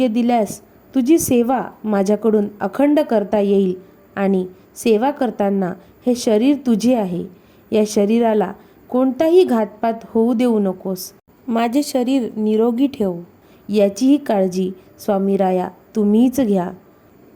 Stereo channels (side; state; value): both; identical; correlation 1.00